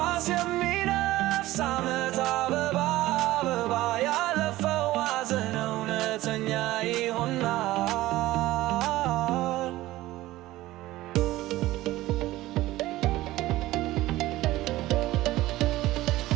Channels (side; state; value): left; quieter; 16.8 dB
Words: የሚነፍስ ዓመት አበባ አበባ ያለፈው ሐዘን እውነተኛ ይሆናል።